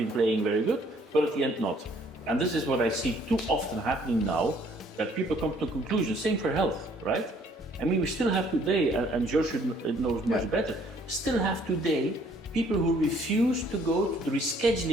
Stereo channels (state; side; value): normal; both; correlation 0.62